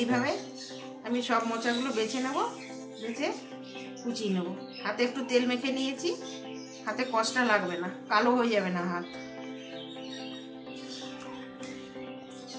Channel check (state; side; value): identical; both; correlation 1.00